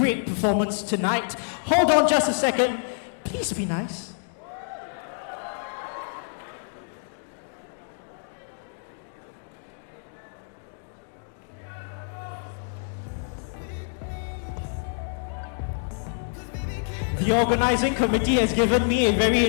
performance tonight. Hold on just a second. Please be nice. The organizing committee has given me a very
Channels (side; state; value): right; silent; digital silence